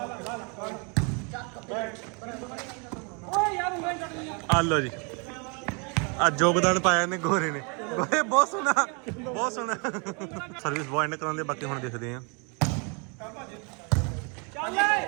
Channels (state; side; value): quieter; left; 34.0 dB